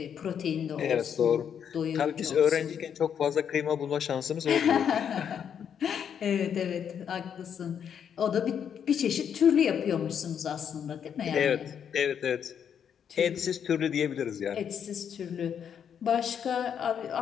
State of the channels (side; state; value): right; quieter; 8.1 dB